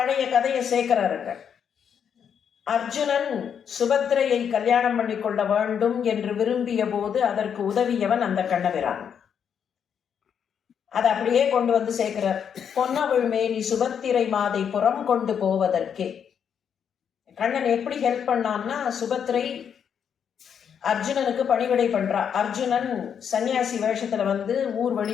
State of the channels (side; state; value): right; quieter; 7.8 dB